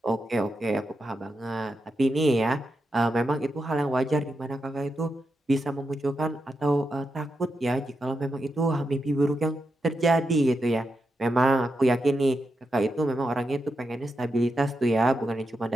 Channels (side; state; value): both; normal; correlation 0.86